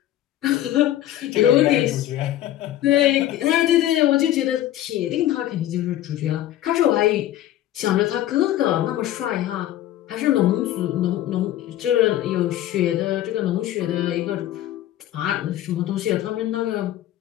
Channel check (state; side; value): quieter; right; 13.1 dB